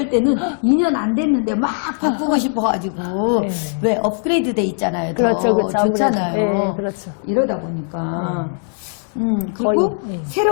때는 2년 안 됐는데 막 바꾸고 싶어가지고. 네. 왜 업그레이드 돼 있잖아요. 그렇죠, 그렇죠. 좋잖아요. 네, 그렇죠. 이러다 보니까. 그리고 거의, 네.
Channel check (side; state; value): right; silent; 56 dB below the other